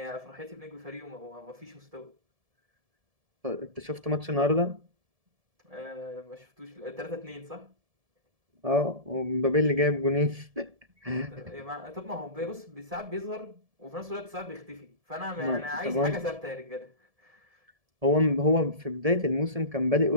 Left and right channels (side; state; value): left; late; 1.7 ms